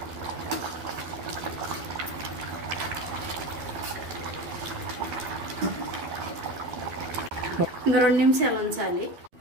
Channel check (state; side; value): late; left; 12 ms